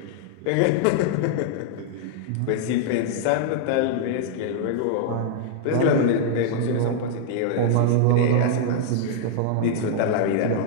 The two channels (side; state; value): both; different; correlation -0.01